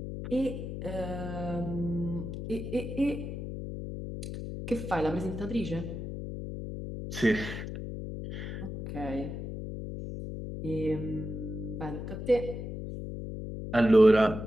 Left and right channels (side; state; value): left; noise; hum, 6 dB below the sound